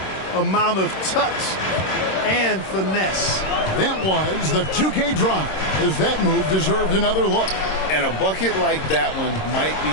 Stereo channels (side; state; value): right; late; 26 ms